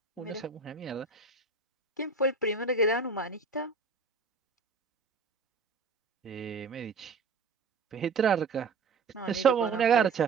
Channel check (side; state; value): left; quieter; 4.5 dB